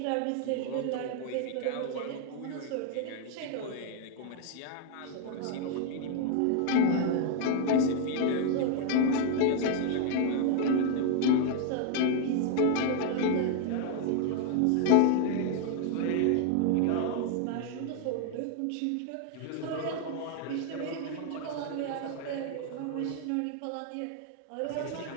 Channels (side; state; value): both; different; correlation 0.00